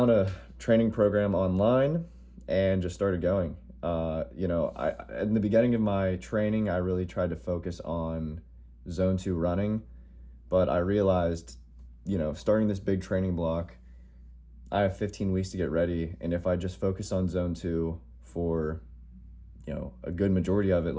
a training program online and just started going. In the beginning of my training, I really tried to focus on zone 2 running, but I realized, starting this big training block, I have 15 weeks to get ready. And if I just focus on zone 2 for, a good majority of it,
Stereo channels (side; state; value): both; identical; correlation 1.00